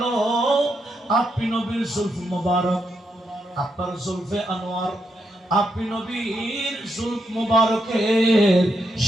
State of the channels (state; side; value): normal; both; correlation 0.81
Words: আপনি নবীর জুলফ মুবারক, আপনার জুলফে আনোয়ার, আপনি নবীর জুলফ মুবারকের